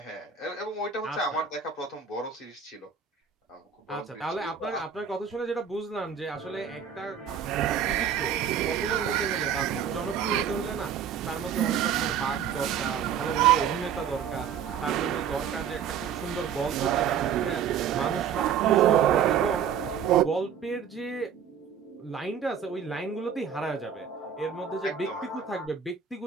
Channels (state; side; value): quieter; left; 7.8 dB